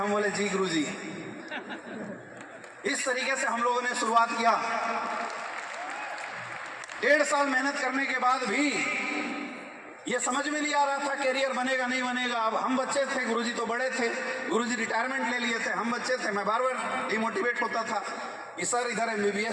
बोले जी गुरुजी। इस तरीके से हम लोगों ने शुरुआत किया। 1.5 साल मेहनत करने के बाद भी ये समझ में नहीं आ रहा था कैरियर बनेगा नहीं बनेगा। अब हम बच्चे थे, गुरुजी तो बड़े थे, गुरुजी रिटायरमेंट ले लिए थे, हम बच्चे थे। मैं बार बार डिमोटिवेट होता था कि सर इधर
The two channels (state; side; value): identical; both; correlation 1.00